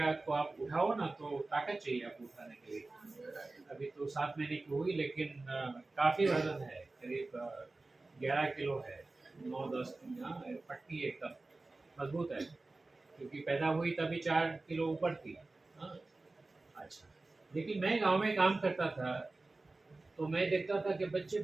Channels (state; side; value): quieter; left; 3.3 dB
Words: को आप उठाओ ना तो ताकत चाहिए आपको उठाने के लिए। अभी तो 7 महीने की हुई, लेकिन काफ़ी वजन है, करीब 11 किलो है, 9-10 पट्टी एकदम मजबूत है, क्योंकि पैदा हुई तभी 4 किलो ऊपर थी। हाँ, अच्छा। लेकिन मैं गांव में काम करता था तो मैं देखता था कि बच्चे